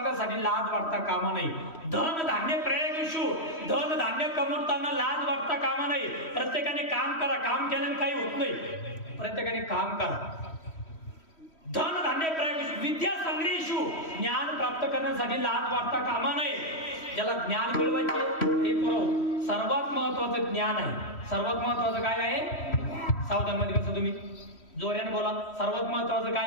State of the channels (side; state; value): right; late; 3.1 ms